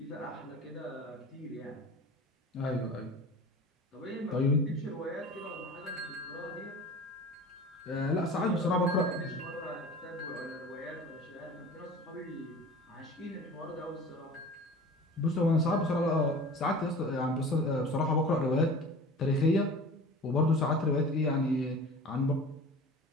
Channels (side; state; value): both; normal; correlation 0.39